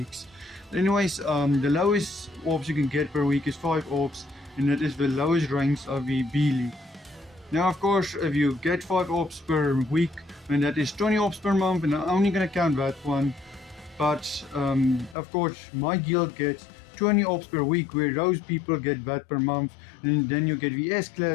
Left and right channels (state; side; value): drops out; right; at 15.2 s